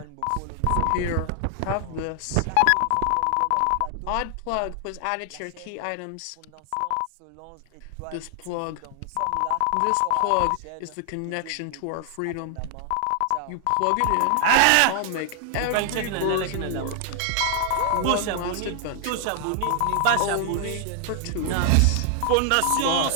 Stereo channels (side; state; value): both; different; correlation 0.00